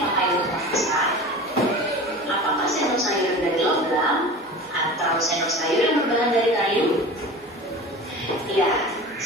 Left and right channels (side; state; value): both; normal; correlation 0.35